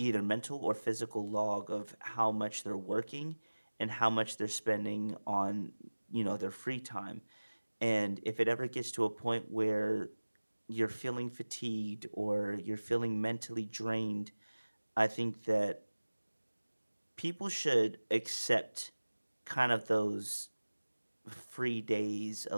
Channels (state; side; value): inverted; both; correlation -1.00